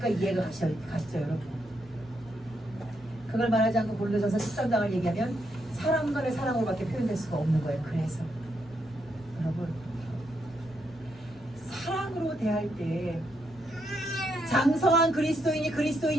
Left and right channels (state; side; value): normal; both; correlation 0.79